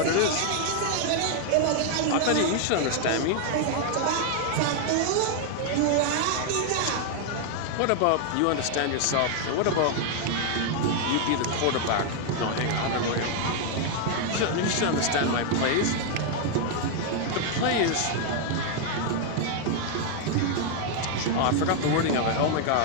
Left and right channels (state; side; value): different; both; correlation 0.00